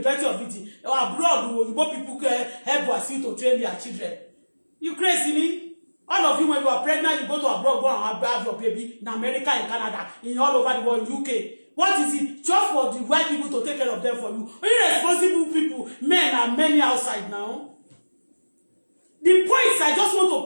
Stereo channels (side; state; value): both; inverted; correlation -1.00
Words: of it. Abroad, Igbo people help Wasiu to train their children. You crazy me? All of you, when you are pregnant, you go to abroad, go and have your baby in America, in Canada, in all over the world, UK. What is it? Just for the white people to take care of them for you. Irresponsible people, men are many outside now. The points, I just want